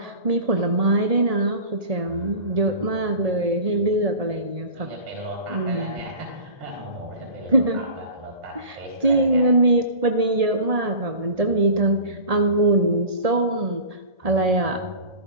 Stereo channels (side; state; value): left; late; 1.8 ms